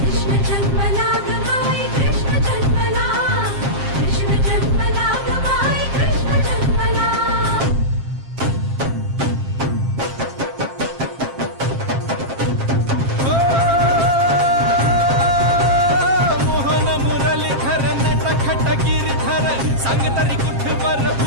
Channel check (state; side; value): late; left; 7.5 ms